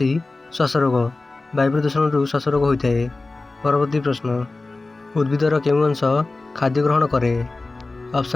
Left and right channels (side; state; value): right; quieter; 3.3 dB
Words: श्वास रोग। वायु प्रदूषण रु श्वास रोग होता है। परवर्ती प्रश्न, उद्भिदर केउं अंश खाद्य ग्रहण करे?